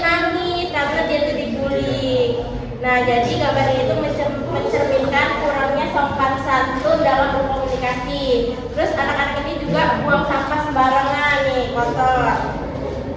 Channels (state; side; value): identical; both; correlation 1.00